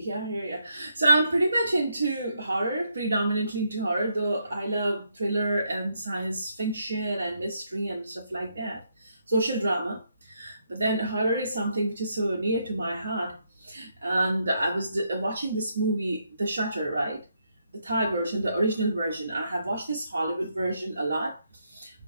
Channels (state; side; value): inverted; both; correlation -0.77